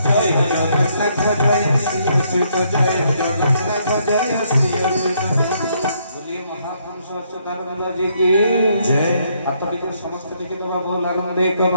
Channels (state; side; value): inverted; both; correlation -0.72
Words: ଜୟ ଜଗନ୍ନାଥ ଜୟ ଶ୍ରୀ ଅଚ୍ୟୁତ ଜୟ ଜଗନ୍ନାଥ ଜୟ ଶ୍ରୀ ଅଚ୍ୟୁତ बोलिए महापुरुष अच्युतानंद जी की जय। हाथ टिके समस्त टिके दबा बोल आनंद एक